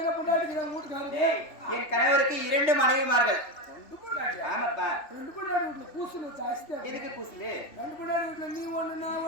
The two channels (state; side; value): late; right; 3.3 ms